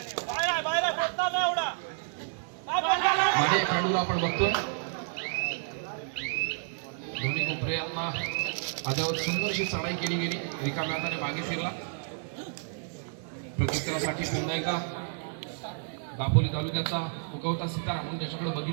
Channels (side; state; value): left; silent; 58 dB below the other